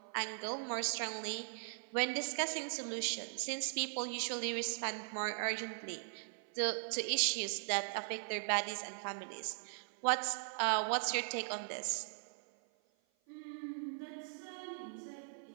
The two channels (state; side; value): silent; left; 51 dB below the other